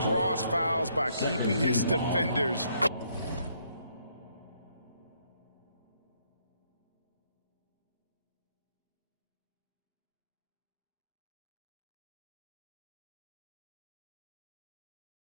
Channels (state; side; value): inverted; both; correlation -0.70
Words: fouls by keeping his defenders.